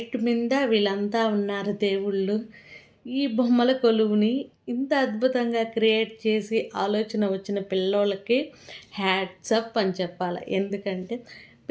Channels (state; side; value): identical; both; correlation 1.00